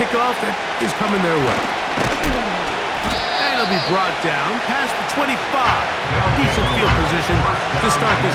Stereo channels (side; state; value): both; identical; correlation 1.00